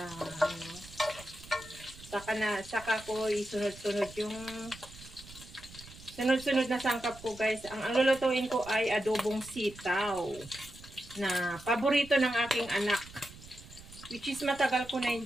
saka ko isunod-sunod yung sunod-sunod na sangkap ko guys. Ang lulutuin ko ay adobong sitaw na paborito ng aking anak. Which is matagal ko na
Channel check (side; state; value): right; noise; rumble, 18 dB below the sound